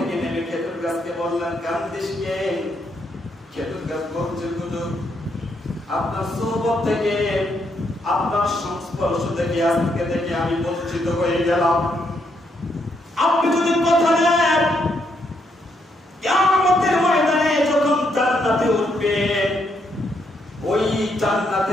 নেমে খেজুর গাছকে বললেন, কান্দিস কে? খেজুর গাছ বলছে, হুজুর আপনার সোহবত থেকে, আপনার সংস্পর্শ থেকে আজকে থেকে আমি বঞ্চিত হয়ে গেলাম। আপনি যদি কথা দেন কিয়ামতের ময়দানে যখন জান্নাতে উঠবেন, ওই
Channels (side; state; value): both; normal; correlation 0.76